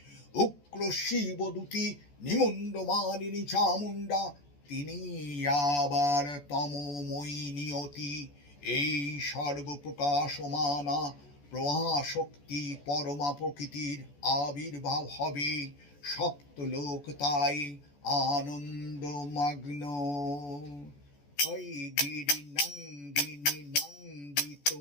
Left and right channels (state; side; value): late; right; 14 ms